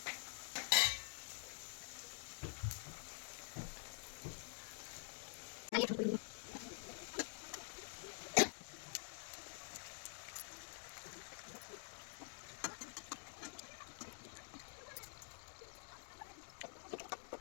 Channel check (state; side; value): silent; right; digital silence